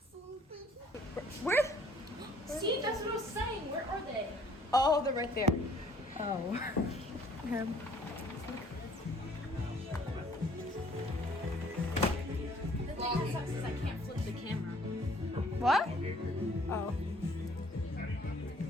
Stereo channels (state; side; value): normal; both; correlation 0.59